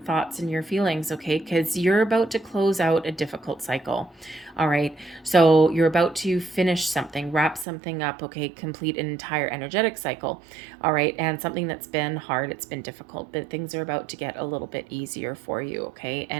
and your feelings, okay? Because you're about to close out a difficult cycle, all right? So you're about to finish something, wrap something up, okay? Complete an entire energetic cycle, all right? And something that's been hard, it's been difficult, but things are about to get a little bit easier for you, okay?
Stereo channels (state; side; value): drops out; left; at 7.7 s